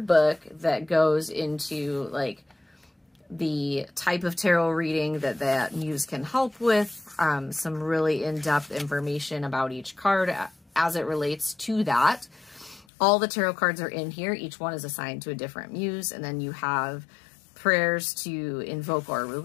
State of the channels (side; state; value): right; drops out; at 12.9 s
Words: that goes into like the type of tarot reading that Muse can help with, some really in-depth information about each card as it relates to that. All the tarot cards are in here. Each one is assigned to a different Muse, and then you have prayers to invoke or